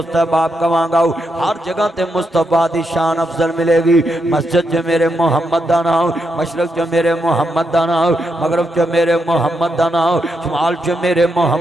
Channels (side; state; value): both; normal; correlation 0.82